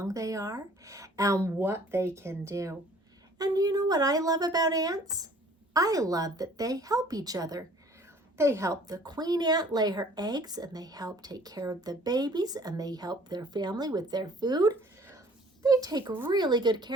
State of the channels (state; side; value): normal; both; correlation 0.54